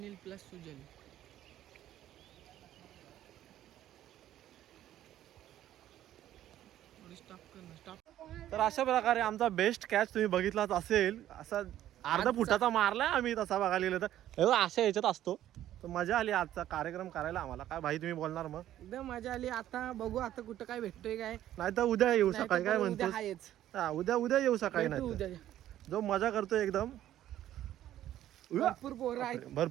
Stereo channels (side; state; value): left; quieter; 12.5 dB